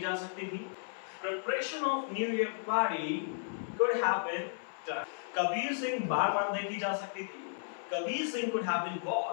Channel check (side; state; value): right; silent; 55 dB below the other